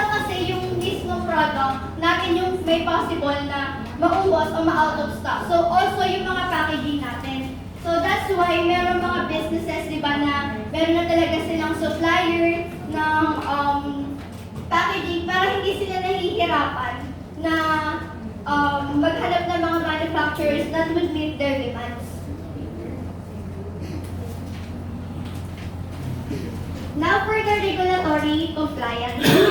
kasi yung mismong product natin yung may possible na maubos o ma-out of stock. So, also yung mga packaging natin. So, that's why meron mga businesses, di ba, na meron na talaga silang supplier ng packaging para hindi sila nahihirapan na maghanap ng mga manufacturers that would meet their demands. Now for the regulatory compliance. We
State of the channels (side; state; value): both; identical; correlation 1.00